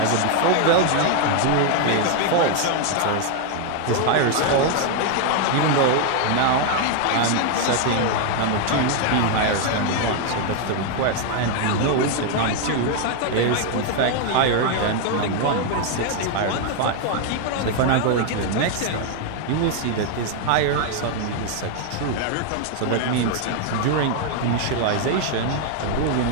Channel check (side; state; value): both; different; correlation 0.01